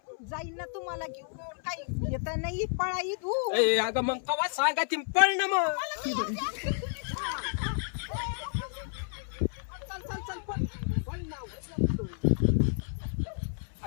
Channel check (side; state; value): right; silent; 57 dB below the other